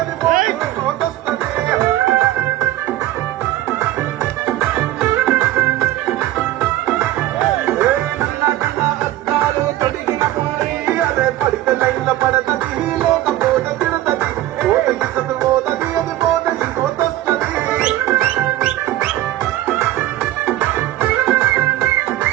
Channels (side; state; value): left; quieter; 14.5 dB